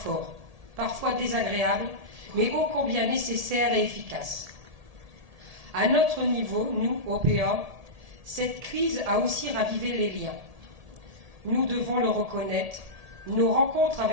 parfois désagréable, mais ô combien nécessaire et efficace. À notre niveau, nous, OPA, cette crise a aussi ravivé les liens. Nous devons le reconnaître, nos rencontres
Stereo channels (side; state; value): left; late; 1.7 ms